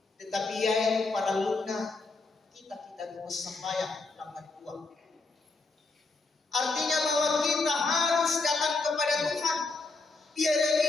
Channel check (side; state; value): right; quieter; 3.6 dB